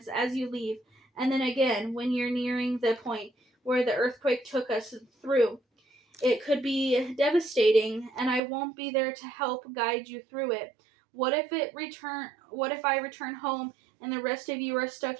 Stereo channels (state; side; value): drops out; left; at 8.4 s